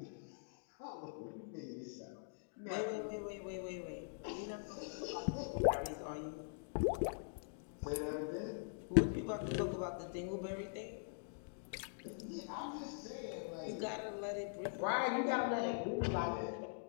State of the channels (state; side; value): silent; right; digital silence